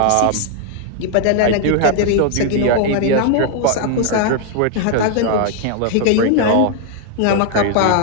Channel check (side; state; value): both; different; correlation 0.00